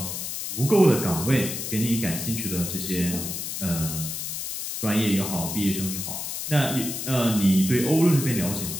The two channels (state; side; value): noise; left; hiss, 5 dB below the sound